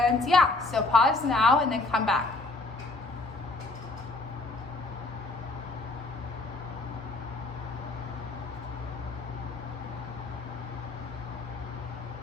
yeah, so pause now and then come back.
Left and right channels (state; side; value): quieter; right; 3.2 dB